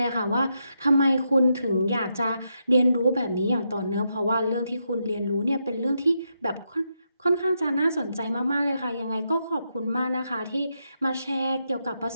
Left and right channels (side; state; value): both; inverted; correlation -0.82